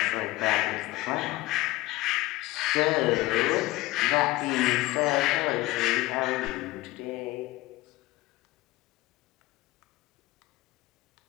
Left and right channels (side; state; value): right; quieter; 18.5 dB